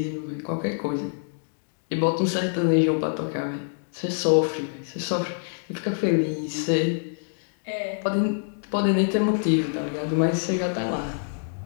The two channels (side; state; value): right; silent; digital silence